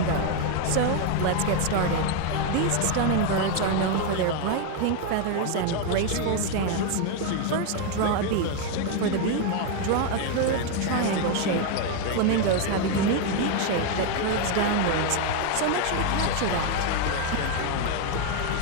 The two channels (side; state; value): both; different; correlation 0.01